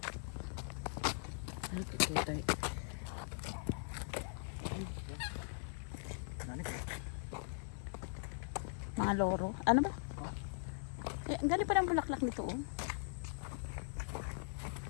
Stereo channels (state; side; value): silent; right; 51 dB below the other